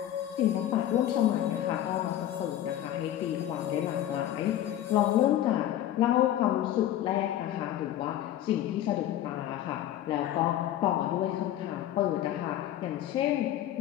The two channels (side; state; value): right; quieter; 12.2 dB